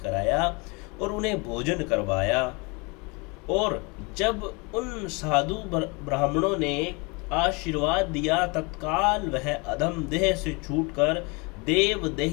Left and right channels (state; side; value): quieter; right; 29.3 dB